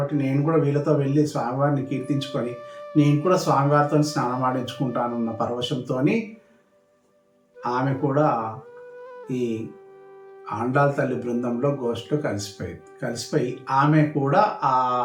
నేను కూడా వీళ్ళతో వెళ్ళి స్వామివారిని కీర్తించుకొని నేను కూడా స్వామివారితో స్నానం ఆడించుకుంటానన్న పరవశంతో ఆమె కూడా ఈ ఆండాల్ తల్లి బృందంలో గోష్ఠిలో కలిసిపోయి ఆమె కూడా ఆ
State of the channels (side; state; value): both; identical; correlation 1.00